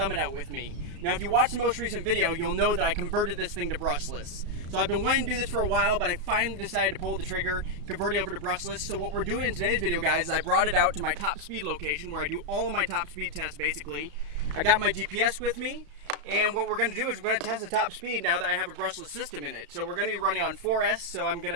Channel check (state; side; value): late; left; 34 ms